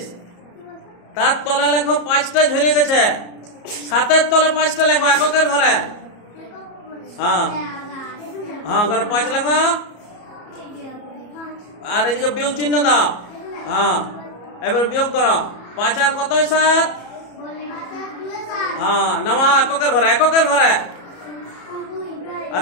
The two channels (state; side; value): late; right; 34 ms